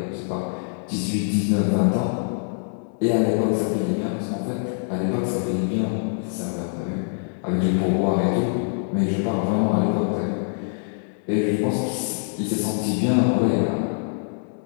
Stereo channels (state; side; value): silent; right; digital silence